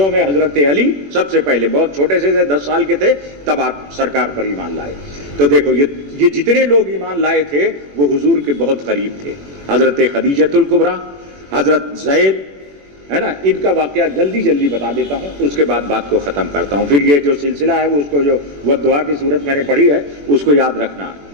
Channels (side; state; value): left; late; 21 ms